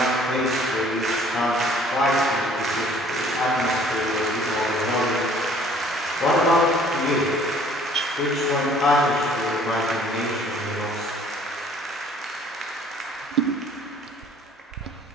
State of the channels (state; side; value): normal; both; correlation 0.56